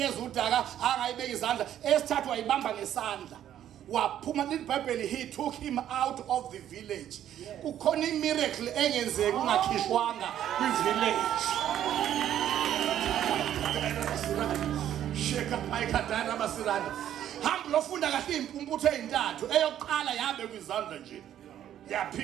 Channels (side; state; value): left; quieter; 11.0 dB